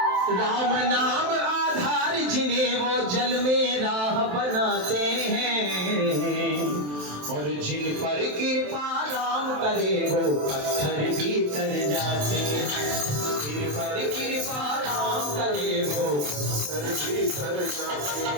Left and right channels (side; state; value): left; late; 27 ms